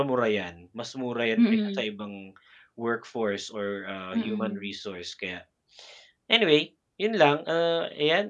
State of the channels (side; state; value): both; identical; correlation 1.00